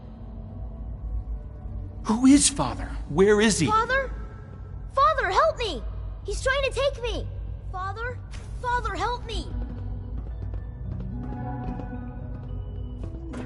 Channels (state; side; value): identical; both; correlation 1.00